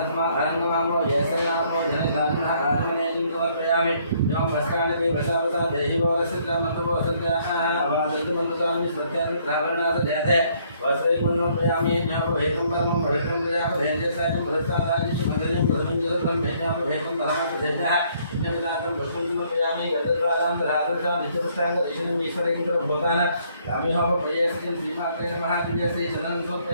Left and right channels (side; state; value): both; inverted; correlation -0.66